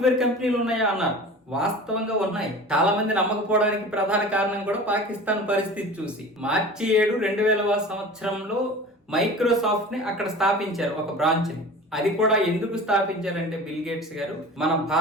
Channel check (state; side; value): normal; both; correlation 0.38